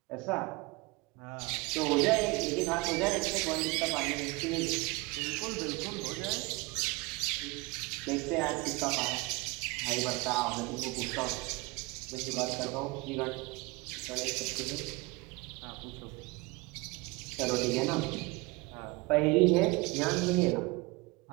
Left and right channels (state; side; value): quieter; left; 24.9 dB